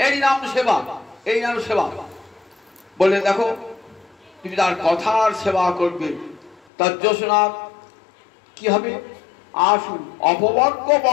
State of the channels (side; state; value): right; drops out; at 6.6 s